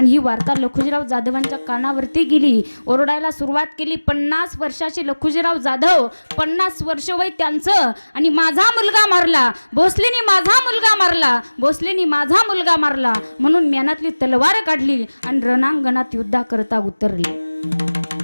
ही वार्ता लखुजीराव जाधवांच्या कानावरती गेली. ओरडायला सुरुवात केली. 50 वर्षाचे लखुजीराव जाधव, 50 वर्ष वय त्यांचं, आणि माझा मुलगा मारला, भोसलेनी माझा मुलगा मारला, भोसलेनी माझा मुलगा मारला म्हणून म्यानातली तलवार काढली आणि रणांगणात युद्धाकरता उतरले.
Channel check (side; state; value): both; inverted; correlation -1.00